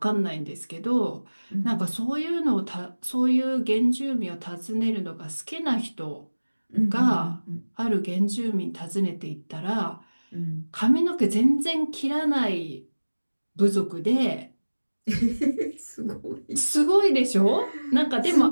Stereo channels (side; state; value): both; inverted; correlation -1.00